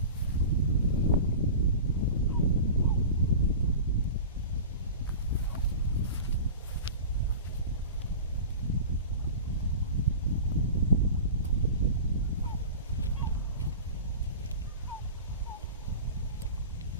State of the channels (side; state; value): both; inverted; correlation -0.34